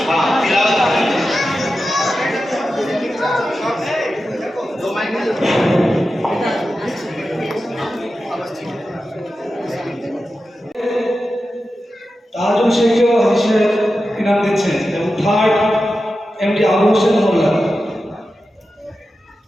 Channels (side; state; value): both; normal; correlation 0.92